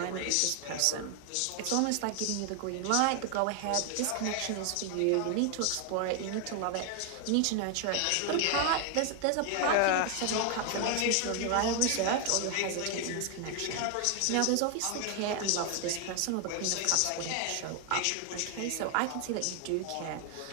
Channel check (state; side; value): different; both; correlation 0.00